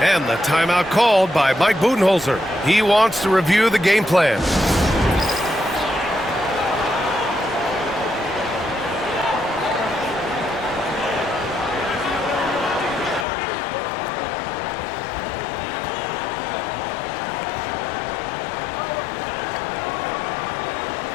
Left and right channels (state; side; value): drops out; right; at 13.2 s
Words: And the timeout called by Mike Budenholzer. He wants to review the game plan.